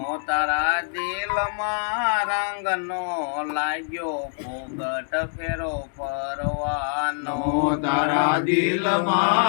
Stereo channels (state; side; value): silent; right; digital silence